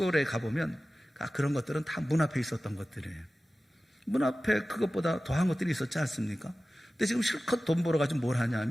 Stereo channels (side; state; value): both; normal; correlation 0.96